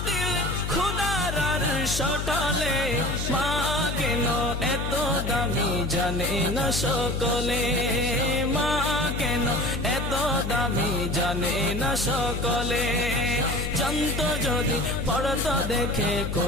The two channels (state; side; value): noise; left; hum, 3 dB below the sound